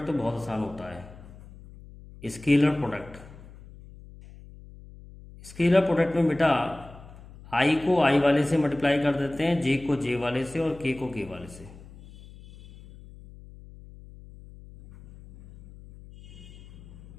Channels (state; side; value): noise; left; hum, 19 dB below the sound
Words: तो बहुत आसान होता है। स्केलर प्रोडक्ट में बेटा i को i वाले से मल्टीप्लाई कर देते हैं, j को j वाले से और k को k वाले से।